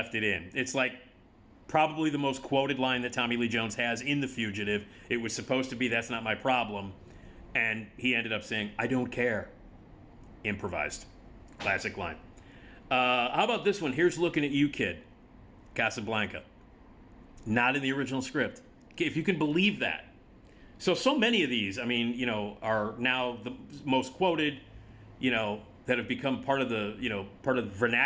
it in. It's like probably the most quoted line that Tommy Lee Jones has in The Fugitive. It was supposed to be, "That's not my problem." And he ended up saying, "I don't care." Improvised. Classic line. How about this one? "Here's Looking at You, Kid." Casablanca. Not in the original script. If you can believe that. So many of these, I mean, are now the most quoted, that have become part of the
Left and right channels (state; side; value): identical; both; correlation 1.00